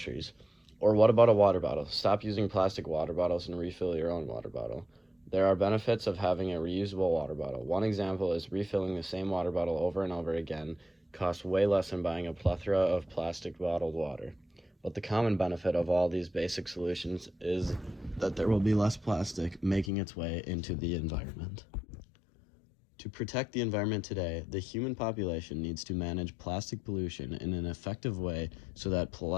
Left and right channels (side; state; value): right; drops out; at 19.9 s